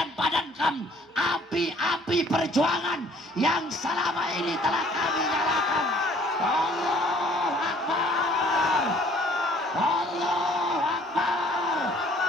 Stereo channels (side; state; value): both; normal; correlation 0.58